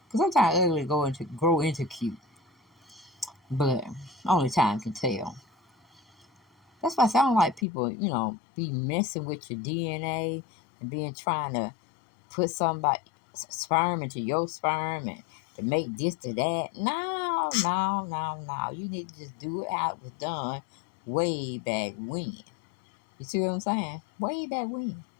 Because sometimes ugly grow into cute. But only time can tell. That's why I sound like people, be messing with your DNA and trying to put somebody's sperm into your sperm and to make this to that. No. You need to just do it how it was done way back when. You see what I'm saying? Way back when.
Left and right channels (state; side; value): drops out; right; at 7.7 s